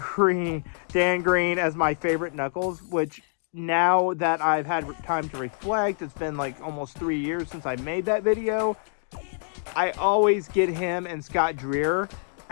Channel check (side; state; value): right; silent; digital silence